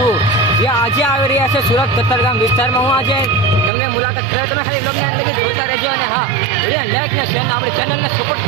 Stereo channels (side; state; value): left; drops out; at 3.7 s